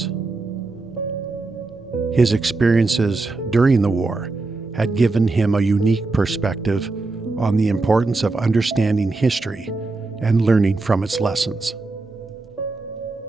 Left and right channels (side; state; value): left; quieter; 3.5 dB